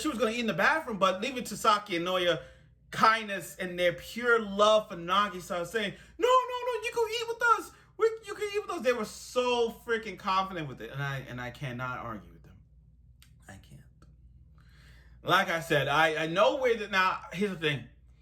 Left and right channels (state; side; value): identical; both; correlation 1.00